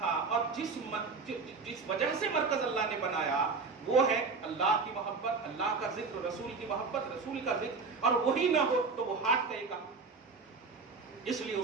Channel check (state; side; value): quieter; left; 4.5 dB